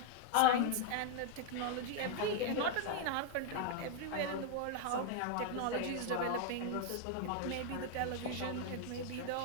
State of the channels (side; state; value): both; different; correlation 0.01